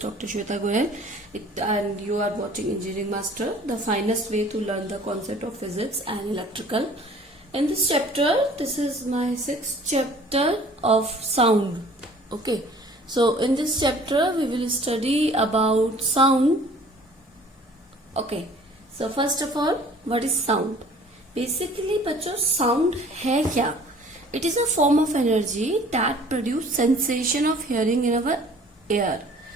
Shweta Goyal and you are watching Engineering Master, the finest way to learn the concept of physics and electrical. In this chapter, this is my sixth chapter of sound. Okay, so in this chapter we will study about sound. Okay, so first of all, what is sound? Basically बच्चों sound है क्या? It is a form of energy that produce sensation of hearing in our ear.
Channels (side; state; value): both; normal; correlation 0.51